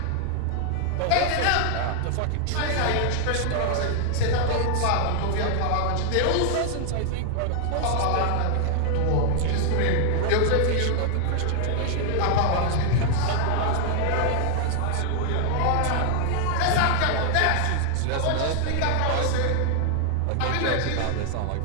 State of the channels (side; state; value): both; different; correlation 0.00